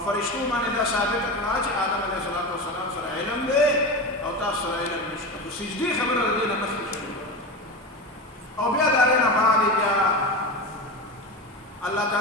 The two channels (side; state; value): both; normal; correlation 0.23